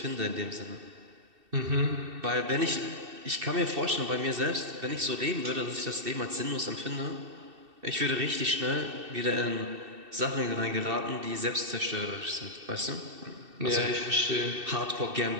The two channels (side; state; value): left; late; 2.7 ms